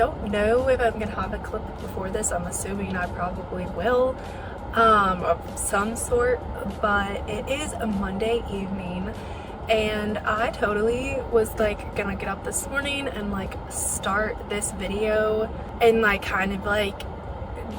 know if I'm gonna have a clip before this. I'm assuming I probably will, of some sort, but it is a Monday evening and I totally was like gonna get up this morning and like start this video and like kind of like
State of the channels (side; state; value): both; identical; correlation 1.00